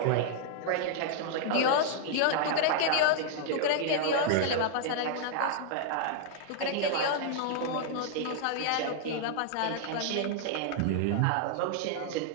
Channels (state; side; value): different; both; correlation -0.01